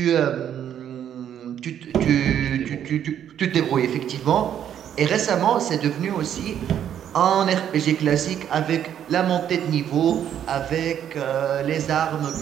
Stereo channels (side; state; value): left; quieter; 9.8 dB